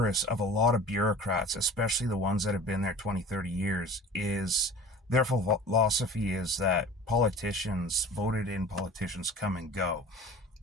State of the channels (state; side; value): normal; both; correlation 0.41